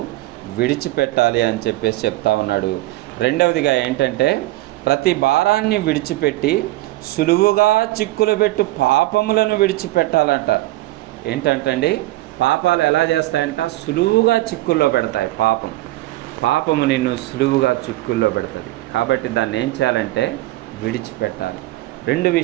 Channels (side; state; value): left; quieter; 18.1 dB